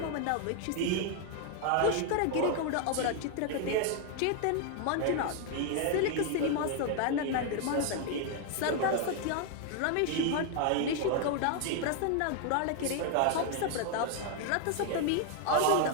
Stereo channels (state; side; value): different; both; correlation 0.00